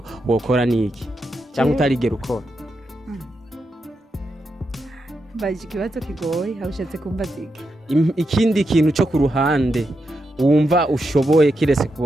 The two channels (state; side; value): normal; both; correlation 0.85